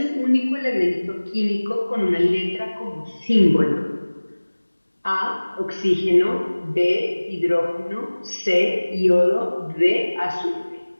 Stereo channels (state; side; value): inverted; both; correlation -1.00